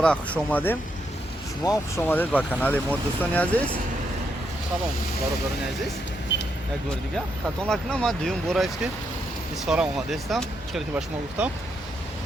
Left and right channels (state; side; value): normal; both; correlation 0.79